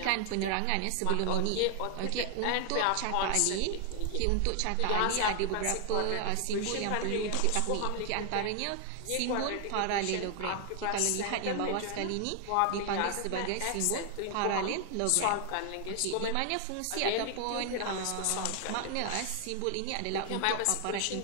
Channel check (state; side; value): different; both; correlation 0.00